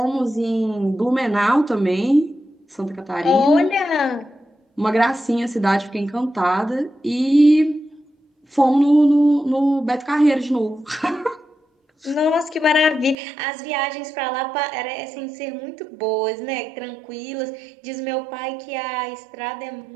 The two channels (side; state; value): left; drops out; at 13.2 s